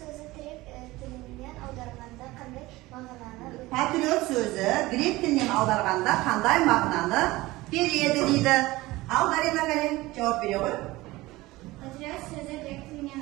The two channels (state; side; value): quieter; left; 19.4 dB